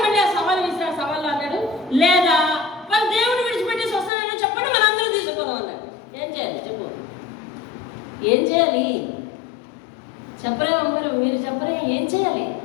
మళ్ళీ ఆ సవాలు వేసిన సవాళ్ళు అన్నాడు, లేదా వాళ్ళు దేవుడిని విడిచిపెట్టేసి వస్తానని చెప్పండి, మన అందరూ తీసుకుపోదాం అన్నాడు. ఏం చేయాలి చెప్పు? ఏం చేయాలి చెప్పరే అమ్మరు, మీరు చెప్పరే, ఏం చేయాలి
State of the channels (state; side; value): drops out; right; at 4.1 s